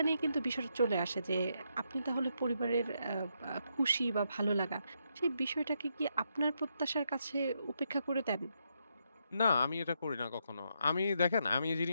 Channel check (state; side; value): inverted; both; correlation -0.80